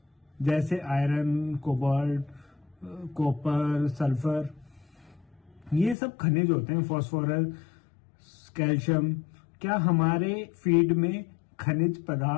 जैसे आयरन, कोबाल्ट, कॉपर, सल्फर, ये सब खनिज होते हैं, फास्फोरस, कैल्शियम, क्या हमारे फीड में खनिज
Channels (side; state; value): right; drops out; at 6.0 s